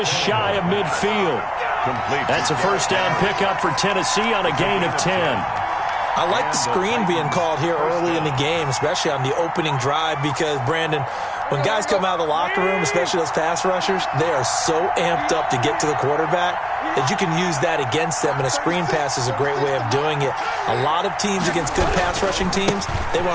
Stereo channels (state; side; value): identical; both; correlation 1.00